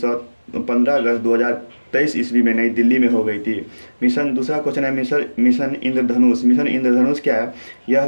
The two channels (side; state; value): both; inverted; correlation -1.00